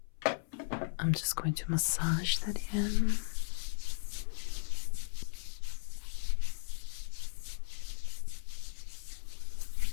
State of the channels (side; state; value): right; silent; 54 dB below the other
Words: I'm just going to massage that in.